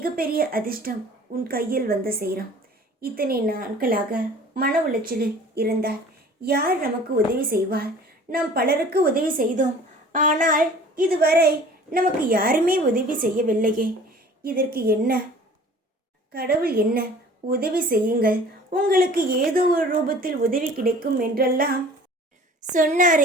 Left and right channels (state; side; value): normal; both; correlation 0.47